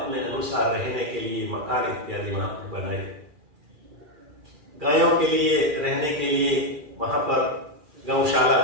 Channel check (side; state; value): left; late; 2.4 ms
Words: अनुसार रहने के लिए मकान इत्यादि वहां पर बनाए। गायों के लिए रहने के लिए वहां पर गौशाला